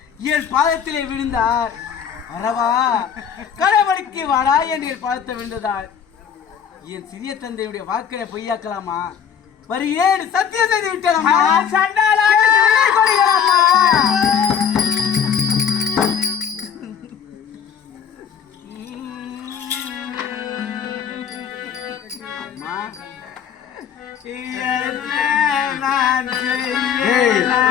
என் பாதத்திலே விழுந்தார். வரவா கடவுளுக்கு வாடா என்று என் பாதத்தை விழுந்ததால் என் சிறிய தந்தையுடைய வாக்கினை பொய்யாக்கலாமா? வருகிறேன் சத்தியம் செய்து விட்டேன்.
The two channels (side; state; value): right; quieter; 7.8 dB